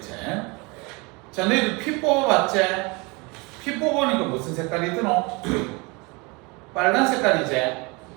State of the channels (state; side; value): quieter; left; 27.6 dB